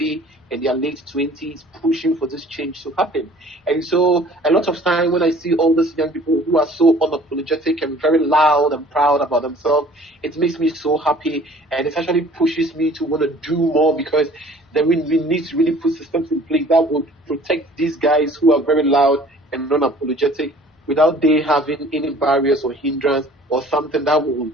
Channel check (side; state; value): both; normal; correlation 0.51